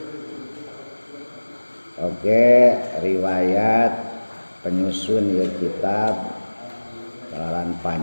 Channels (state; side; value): inverted; both; correlation -1.00